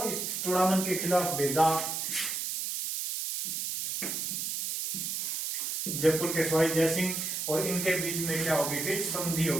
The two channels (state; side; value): noise; right; hiss, 2 dB below the sound